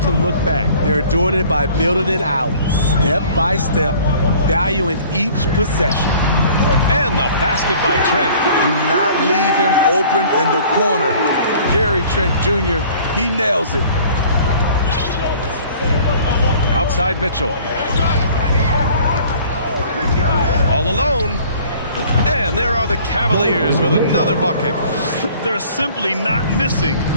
to look back. They're doing it by building it out, step by step, valuing each possession. And the basket by Trent. Do not leave him open in the corner. Gary Trent Jr., he nails it. Outside Mitchell. All alone. And there are the Cavaliers with another bucket. They're simply not missing.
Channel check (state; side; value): inverted; both; correlation -0.51